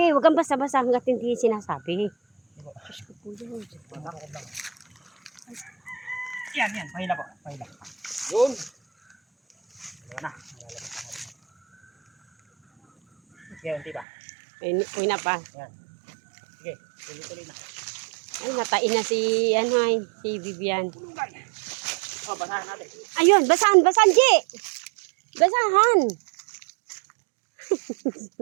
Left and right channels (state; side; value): drops out; left; at 14.1 s